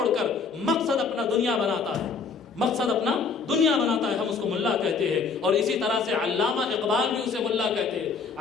کر مقصد اپنا دنیا بناتا ہے، مقصد اپنا دنیا بناتا ہے، ہم اس کو ملا کہتے ہیں۔ اور اسی طرح سے علامہ اقبال بھی اسے ملا کہتے ہیں۔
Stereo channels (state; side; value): quieter; right; 5.1 dB